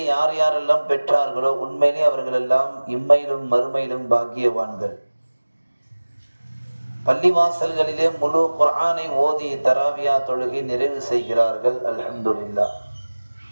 யார் யாரெல்லாம் பெற்றார்களோ உண்மையிலே அவர்கள் எல்லாம் இம்மையிலும் மறுமையிலும் பாக்கியவான்கள். பள்ளிவாசல்களிலே முழு குர்ஆனை ஓதி தராவியா தொழுகை நிறைவு செய்கிறார்கள். அல்ஹம்துலில்லாஹ்.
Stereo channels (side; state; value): both; inverted; correlation -1.00